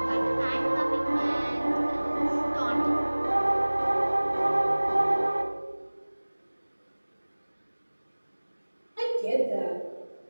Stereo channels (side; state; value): both; inverted; correlation -1.00